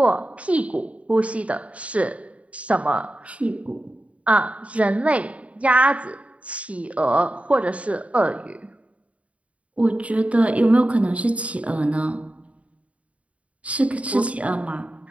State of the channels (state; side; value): late; left; 0.065 ms